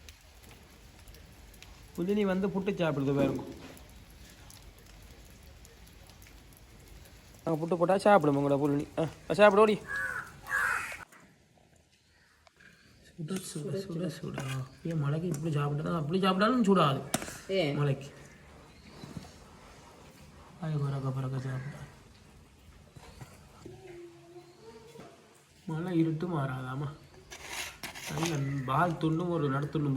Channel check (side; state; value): both; identical; correlation 1.00